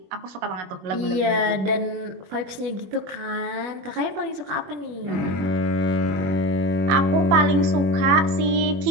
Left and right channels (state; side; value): late; left; 21 ms